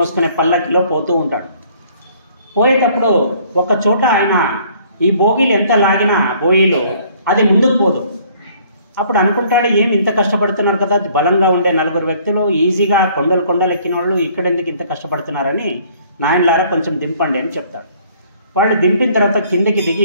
పల్లకిలో పోతూ ఉంటాడు. పోయేటప్పుడు ఒక చోట ఆయన ఈ బోగీలు ఎంత లాగినా బోయిలు అది ముందుకు పోదు. అప్పుడు అనుకుంటాడు, ఏమి ఇంత కష్టపడుతున్నారు కదా, బలంగా ఉండే 4 వ్యక్తులు ఈజీగా కొండలు ఎక్కిన వాళ్ళు ఇక్కడ ఎందుకు ఇంత కష్టపడుతున్నారని, నాయనలారా కొంచెం దింపండి అని చెప్తాడు. వాళ్ళు దింపిన తర్వాత కిందకి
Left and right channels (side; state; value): both; inverted; correlation -0.59